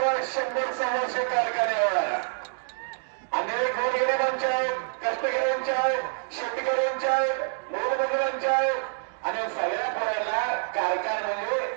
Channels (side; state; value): left; silent; digital silence